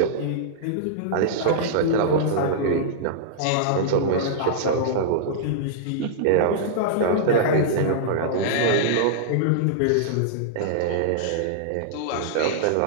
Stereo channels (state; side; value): different; both; correlation -0.02